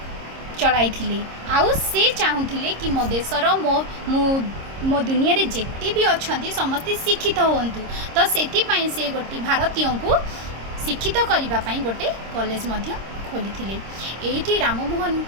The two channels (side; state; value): left; late; 26 ms